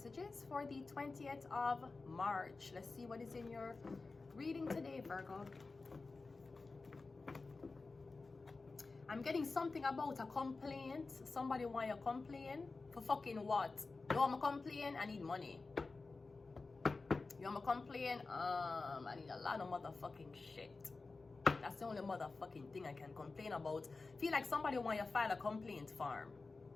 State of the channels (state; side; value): quieter; right; 3.8 dB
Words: for the 20th of March. Let's see what is in your reading today, Virgo. I'm getting something about a complaint. Somebody want you to complain for fucking what? You want me to complain? I need money. You want me to complain? I need a lot of motherfucking shit. That's the only motherfucking thing I can complain about. Feel like somebody want you to file a complaint form.